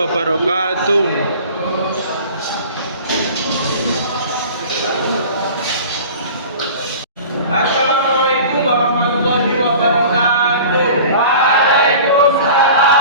Assalamualaikum warahmatullahi wabarakatuh.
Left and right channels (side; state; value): both; inverted; correlation -0.41